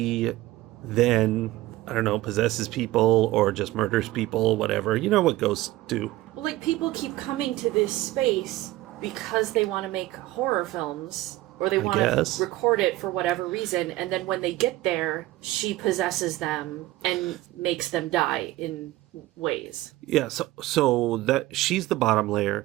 then, I don't know, possesses people or just murders people, whatever. You know what ghosts do. Well, like, people keep coming to this space because they want to make horror films, or they want to record it for whatever reason, and then when they get there, she possesses them and makes them die in ways. Yeah, so that she's the bottom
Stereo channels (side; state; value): left; quieter; 17.1 dB